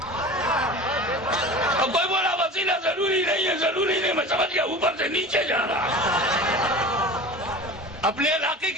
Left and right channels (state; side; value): normal; both; correlation 0.35